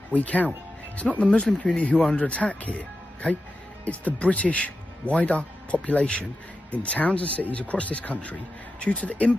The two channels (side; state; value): both; normal; correlation 0.91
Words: week out. It's not the Muslim community who are under attack here, okay? It's the British wider population in towns and cities across this country due to the